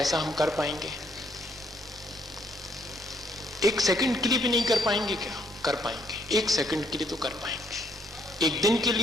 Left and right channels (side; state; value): both; normal; correlation 0.70